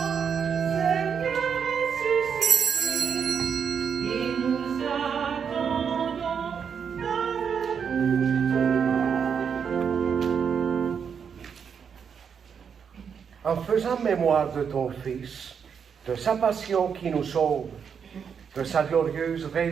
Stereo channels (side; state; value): left; quieter; 6.9 dB